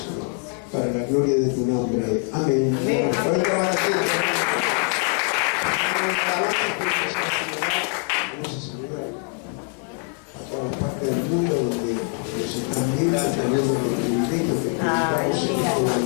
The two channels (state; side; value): quieter; right; 38.7 dB